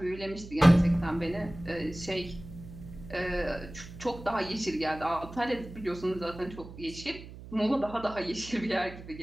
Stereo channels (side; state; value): right; noise; hum, 14 dB below the sound